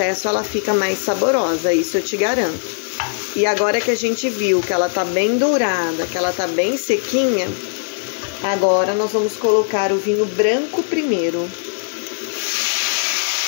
ela fica mais saborosa, isso eu te garanto. E agora que a gente viu que ela tá bem dourada, que ela tá bem sequinha, agora nós vamos colocar o vinho branco primeiro.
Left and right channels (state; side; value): silent; right; 63 dB below the other